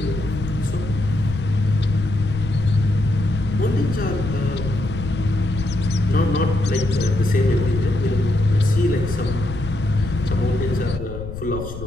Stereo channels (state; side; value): noise; left; rumble, 9 dB below the sound